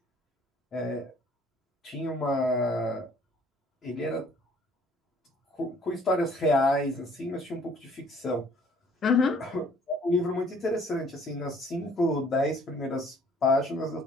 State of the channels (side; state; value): both; normal; correlation 0.58